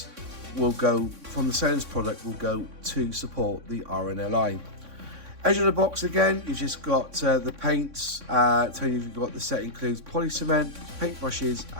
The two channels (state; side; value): late; left; 3.6 ms